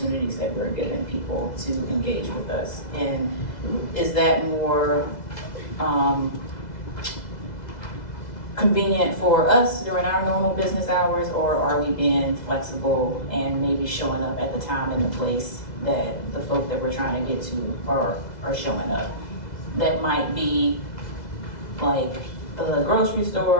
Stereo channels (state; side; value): late; right; 2.0 ms